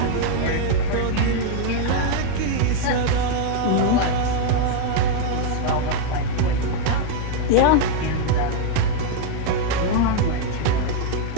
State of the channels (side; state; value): both; different; correlation 0.00